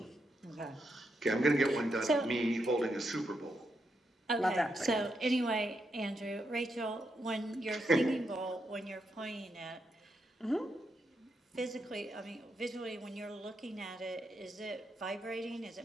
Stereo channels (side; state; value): both; normal; correlation 0.82